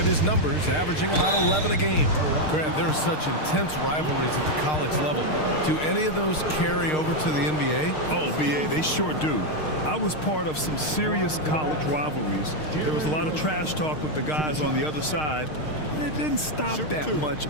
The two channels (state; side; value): late; right; 6.5 ms